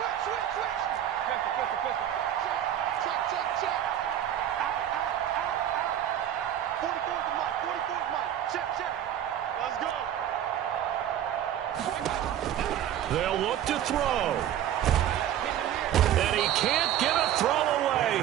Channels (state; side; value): quieter; left; 11.0 dB